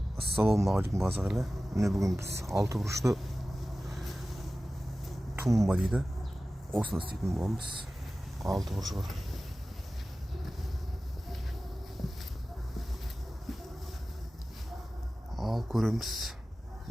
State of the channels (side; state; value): both; normal; correlation 0.96